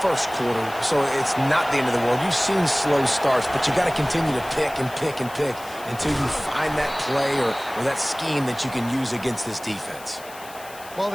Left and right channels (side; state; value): left; noise; hiss, 18 dB below the sound